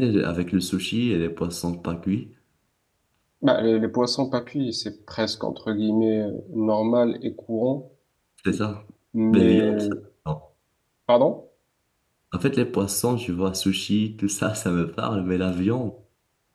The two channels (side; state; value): both; identical; correlation 1.00